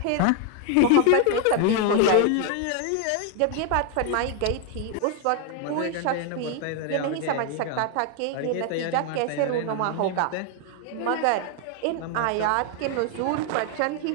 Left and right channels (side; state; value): both; different; correlation 0.01